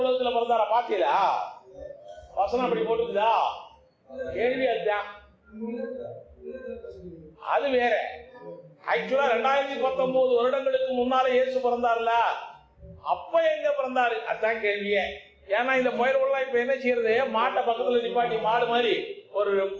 பிறந்தாரா? பாத்தீங்களா? வசனம் அப்படி போட்டுக்குதா? கேள்வி அதுதான். அது வேற. ஆக்சுவலா 2019 வருடங்களுக்கு முன்னால இயேசு பிறந்தார்ல, அப்ப எங்க பிறந்தாரு? அதான் கேள்வியே. ஏன்னா இந்த பயிர்கள்லாம் இப்ப என்ன செய்யறது, மாட்டை பக்கத்துல நிப்பாட்டி மாடு மாதிரி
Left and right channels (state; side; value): identical; both; correlation 1.00